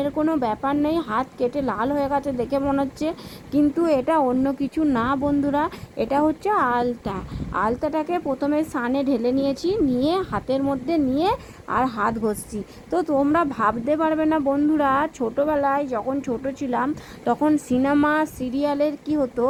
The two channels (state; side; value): identical; both; correlation 1.00